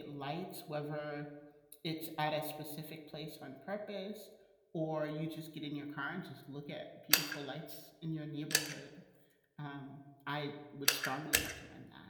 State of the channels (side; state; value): both; identical; correlation 1.00